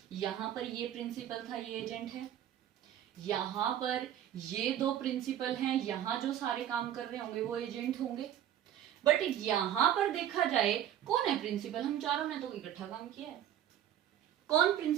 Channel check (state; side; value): quieter; left; 11.1 dB